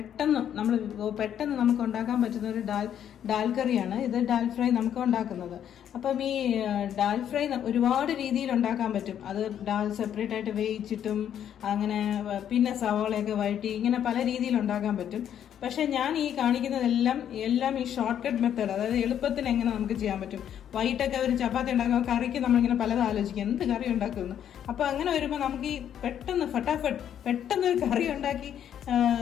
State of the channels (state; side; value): quieter; right; 9.7 dB